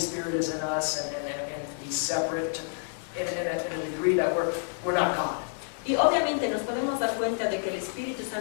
is in us and be separate in a degree that we're not God. Y obviamente nos podemos dar cuenta de que el Espíritu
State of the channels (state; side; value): silent; right; digital silence